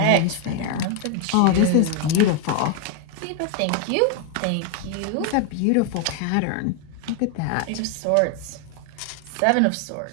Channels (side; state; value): both; different; correlation 0.01